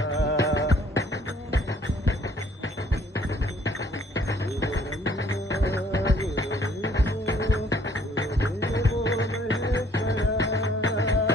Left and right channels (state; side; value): normal; both; correlation 0.60